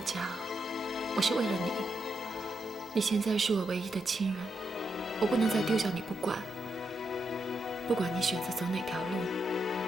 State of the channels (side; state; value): both; normal; correlation 0.83